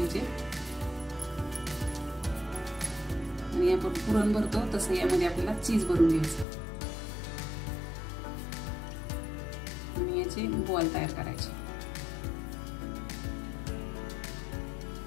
आणि आपण पुरण भरतो तसं यामध्ये आपल्याला चीज भरून घ्यायचं आणि याचे बॉल तयार करायचे।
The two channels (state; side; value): drops out; right; at 6.5 s